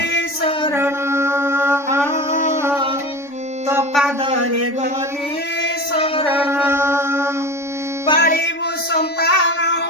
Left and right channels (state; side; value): late; right; 3.5 ms